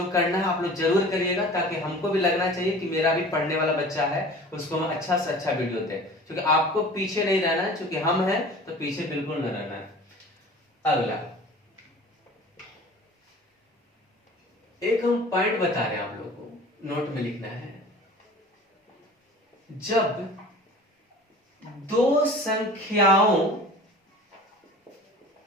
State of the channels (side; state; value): both; normal; correlation 0.42